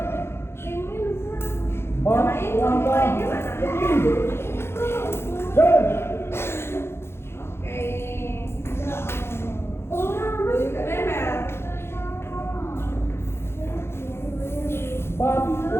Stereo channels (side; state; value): right; late; 0.12 ms